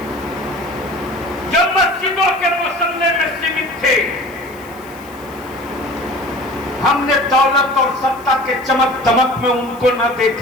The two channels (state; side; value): noise; left; hiss, 24 dB below the sound